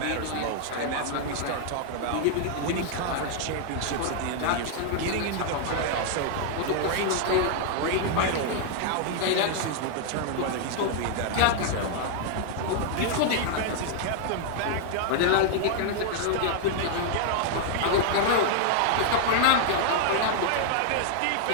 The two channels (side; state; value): both; different; correlation 0.00